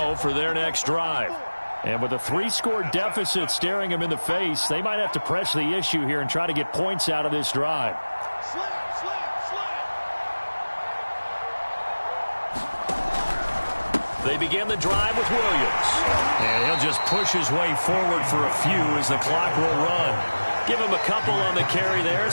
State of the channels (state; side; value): inverted; both; correlation -1.00